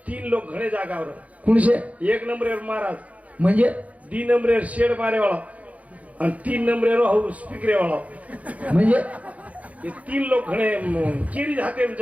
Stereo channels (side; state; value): left; late; 0.068 ms